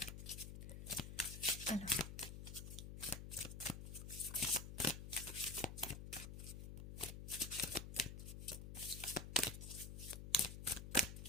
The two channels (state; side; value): noise; left; hum, 8 dB below the sound